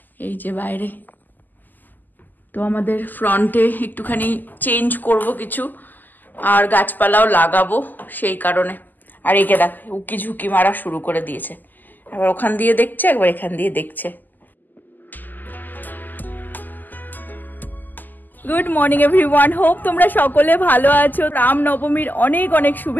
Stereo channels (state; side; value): late; right; 0.086 ms